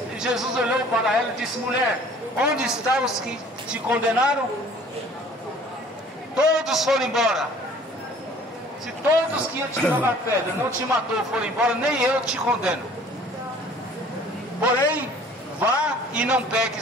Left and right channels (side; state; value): both; normal; correlation 0.52